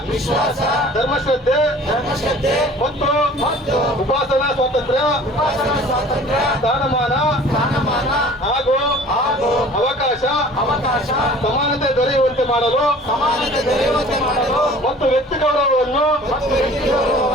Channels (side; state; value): both; normal; correlation 0.47